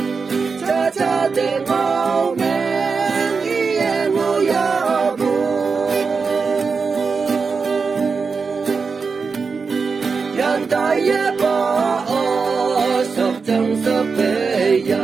cha cha để mau men yên ngồi ya bu yan tai ya ba o sập chẳng sập về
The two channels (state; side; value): quieter; left; 5.0 dB